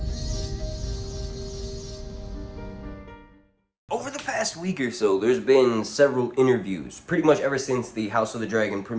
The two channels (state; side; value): identical; both; correlation 1.00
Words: Over the past week or so, there's been several interviews, pretty much ever since the House of the Dragon